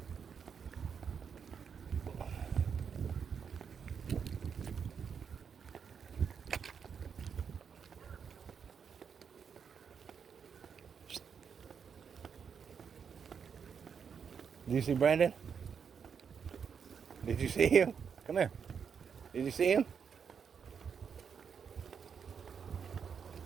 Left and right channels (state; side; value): quieter; left; 6.8 dB